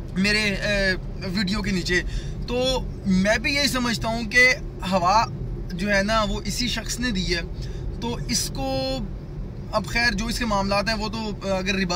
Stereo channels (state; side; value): identical; both; correlation 1.00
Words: मेरे वीडियो के नीचे, तो मैं भी यही समझता हूँ कि हवा जो है ना वो इसी शख्स ने दी है। तो इसको अब खैर जो इसके मामलात हैं वो तो अगर